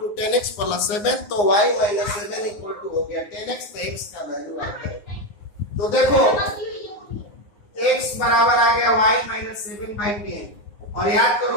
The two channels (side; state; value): right; late; 9.6 ms